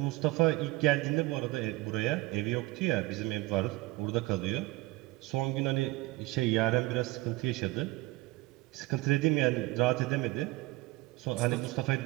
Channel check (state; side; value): quieter; left; 21.1 dB